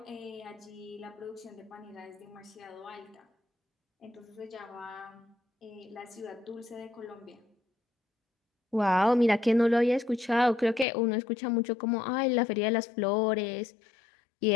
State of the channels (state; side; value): drops out; right; at 10.9 s